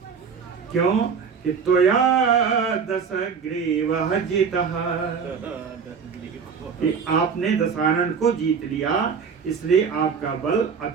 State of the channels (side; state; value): left; quieter; 6.2 dB